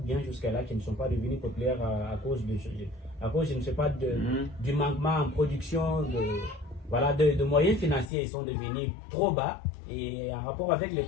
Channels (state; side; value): drops out; right; at 8.1 s